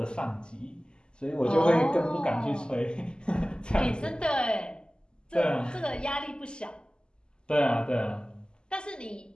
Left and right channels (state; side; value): late; right; 0.048 ms